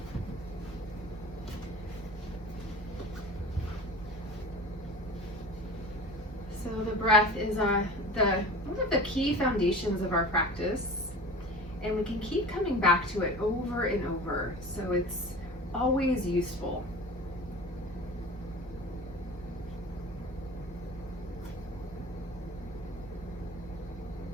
So the breath is one of the key foundations of our practice, and we can keep coming back to it over and over, so it's always useful.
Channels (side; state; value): both; normal; correlation 0.37